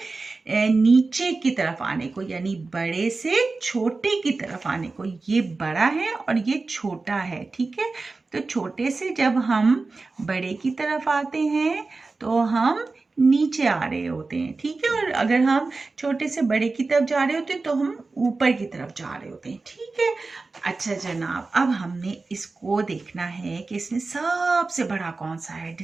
नीचे की तरफ आने को, यानी बड़े से छोटे की तरफ आने को। ये बड़ा है और ये छोटा है, ठीक है। तो छोटे से जब हम बड़े की तरफ आते हैं तो हम नीचे आ रहे होते हैं, ठीक है। और अगर हम छोटे से बड़े की तरफ जा रहे होते हैं तो हम ऊपर की तरफ जा रहे होते हैं, ठीक है। अच्छा जनाब, अब हमने इसको देखना है कि इसमें सबसे बड़ा कौन सा है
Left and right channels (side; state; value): left; quieter; 3.8 dB